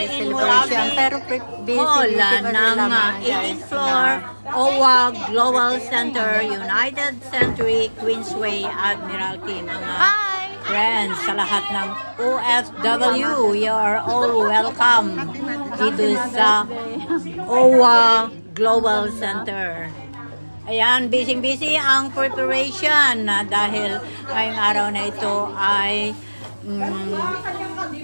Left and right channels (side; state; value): both; inverted; correlation -1.00